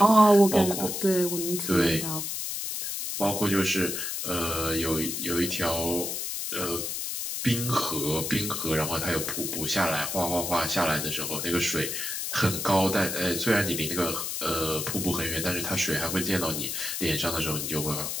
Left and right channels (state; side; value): noise; left; hiss, 3 dB below the sound